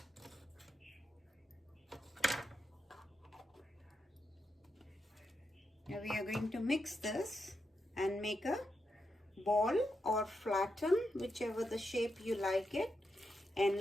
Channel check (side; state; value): both; normal; correlation 0.85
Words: Now we are going to mix this and make a ball or flatten, whichever the shape you like it, and